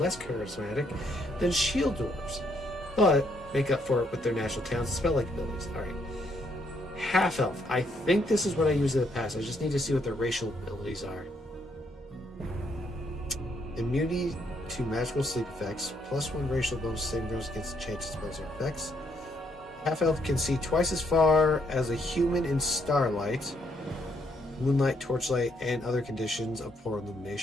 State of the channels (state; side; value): normal; both; correlation 0.73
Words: charismatic than shield dwarves, but make up for it with their natural talents and spell-like abilities. Alright. Half-elf. I think this is what I used in the past. I just need to see what their racial abilities are. Immunity to magical sleep effects, +1 racial bonus saving throws against enchanted spells or effects. Half-elf can see twice as far as a human in starlight, moonlight, torchlight, and other conditions of poor